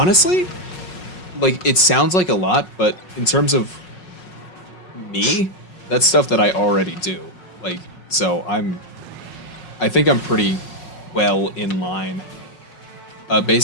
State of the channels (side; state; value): right; late; 5.5 ms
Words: like it sounds like a lot, but in terms of me, that's stuff that I already do. Like, so I think I'm pretty well in line.